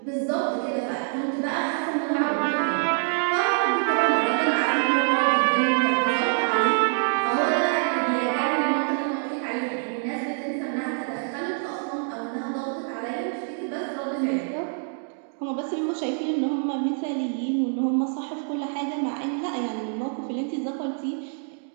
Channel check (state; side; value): silent; left; 61 dB below the other